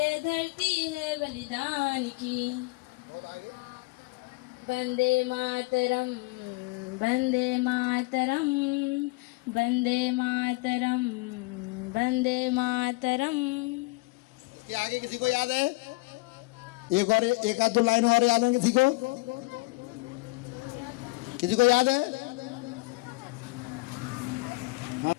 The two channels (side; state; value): right; quieter; 24.9 dB